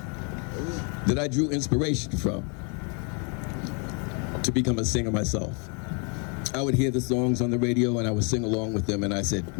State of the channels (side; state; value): right; quieter; 36.9 dB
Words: that I drew inspiration from to become a singer myself. I would hear the songs on the radio and I would sing along with them, and I said,